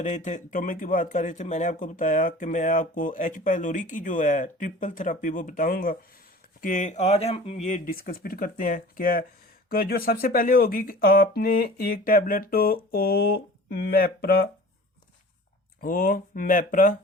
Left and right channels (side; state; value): both; normal; correlation 0.42